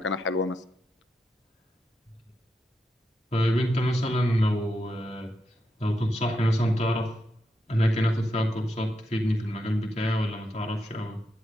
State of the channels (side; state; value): both; normal; correlation 0.85